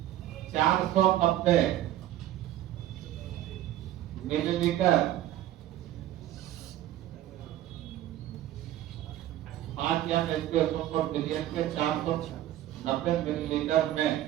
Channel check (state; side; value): quieter; left; 13.4 dB